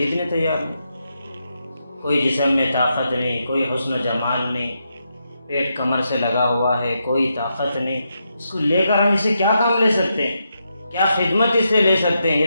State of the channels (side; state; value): both; inverted; correlation -0.83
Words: تیار نہیں۔ کوئی جسم میں طاقت نہیں، کوئی حسن و جمال نہیں، پیٹ کمر سے لگا ہوا ہے، کوئی طاقت نہیں، اس کو لے کر ہم اسے کیا کام لے سکتے ہیں، کیا خدمت اس سے لے سکتے ہیں،